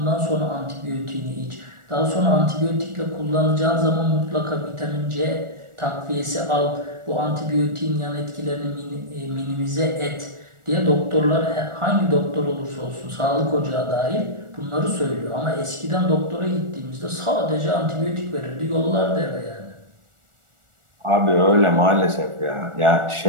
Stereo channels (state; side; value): late; left; 1.4 ms